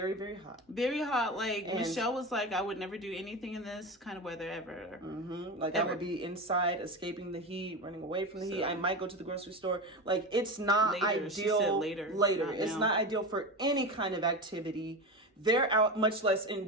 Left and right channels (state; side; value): normal; both; correlation 0.23